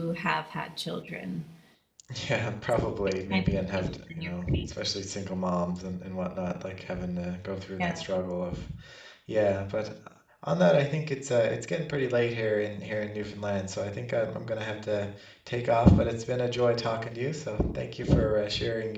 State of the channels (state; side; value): identical; both; correlation 1.00